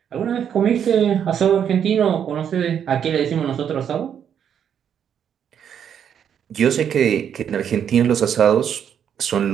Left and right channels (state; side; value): quieter; left; 8.5 dB